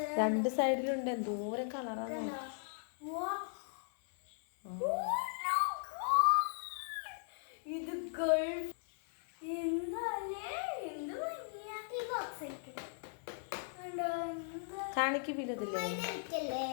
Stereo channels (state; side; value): silent; right; 53 dB below the other